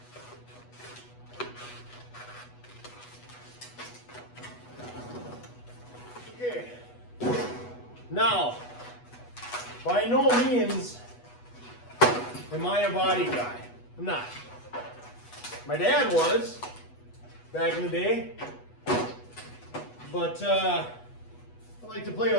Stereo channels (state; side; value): late; right; 8.2 ms